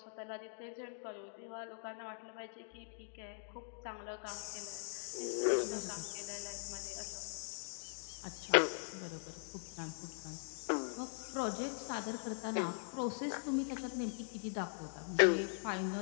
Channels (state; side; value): silent; right; digital silence